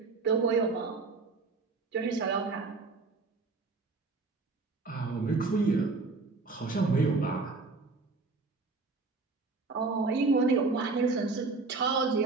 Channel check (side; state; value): left; quieter; 4.0 dB